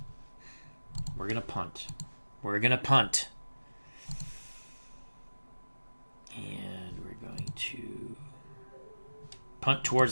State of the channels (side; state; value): both; inverted; correlation -1.00